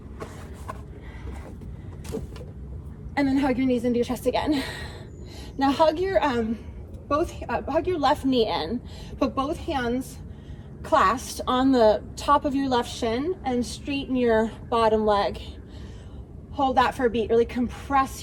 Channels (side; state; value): both; identical; correlation 1.00